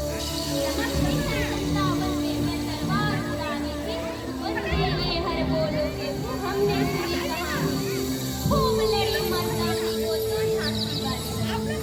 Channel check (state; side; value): identical; both; correlation 1.00